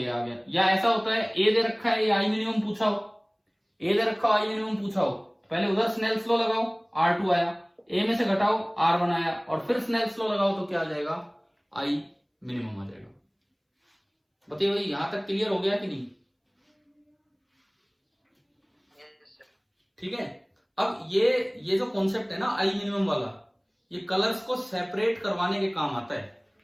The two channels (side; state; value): both; identical; correlation 1.00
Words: आ गया। या ऐसा होता है ए दे रखा है, ये आई मिनिमम पूछा हो, ए दे रखा हो, आई मिनिमम पूछा हो, पहले उधर स्नेल्स लॉ लगाओ, R2 आया, ए में से घटाओ, R1 आया, और फिर स्नेल्स लॉ लगाओ तो क्या आ जाएगा, आई मिनिमम आ जाएगा। बताइए भाई यहां तक क्लियर हो गया कि नहीं? ठीक है। अब ये जो कॉन्सेप्ट है ना आई मिनिमम वाला, ये कलर्स को सेपरेट करवाने के काम आता है।